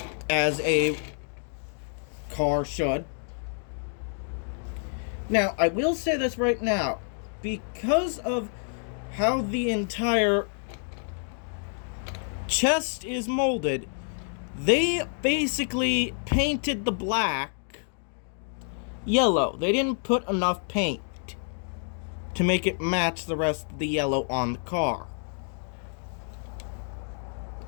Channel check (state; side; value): silent; right; 59 dB below the other